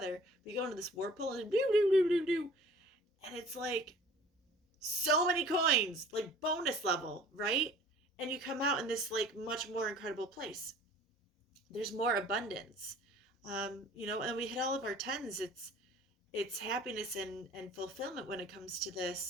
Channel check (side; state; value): both; normal; correlation 0.49